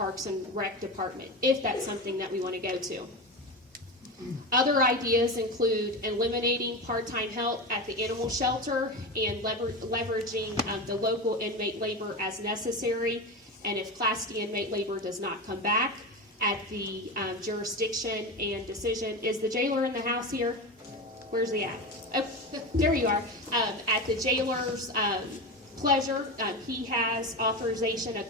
and Rec Department, if that's something that we want to go to. Other ideas include eliminating part-time help at the animal shelter and leveraging the local inmate labor as necessary. And if Class D inmate labor does not come back at the jurisdiction and decision, is the jailer in the house here? Where's he at? Oh, there you are. At the jailer's pleasure, he has authorization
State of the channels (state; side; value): normal; both; correlation 0.22